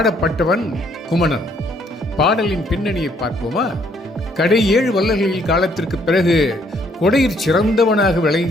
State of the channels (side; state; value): both; normal; correlation 0.67